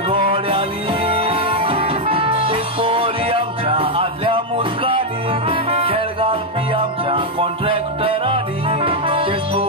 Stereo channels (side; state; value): both; normal; correlation 0.01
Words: तेच पोरी आमच्या आदल्या मुजकांनी खेळ घालपी आमच्या कॉन्ट्रॅक्टरांनी तेच